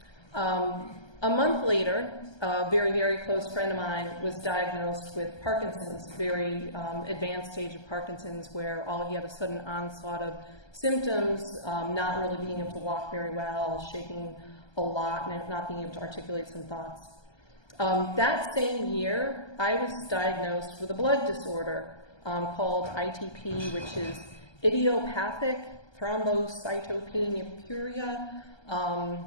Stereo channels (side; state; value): right; late; 1.3 ms